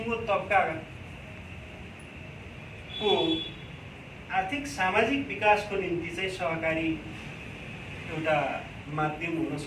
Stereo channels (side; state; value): both; identical; correlation 1.00